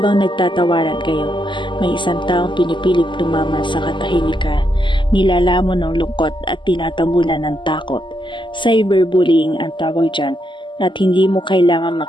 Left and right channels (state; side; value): late; right; 0.23 ms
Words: nagtatawaran kayo, may isang taong pinipilit lumaman sa katahimikan, nilalamon ng lungkot at tinatabunan ng takot. Cyberbullying ang tawag dyan, at hindi mo kailangan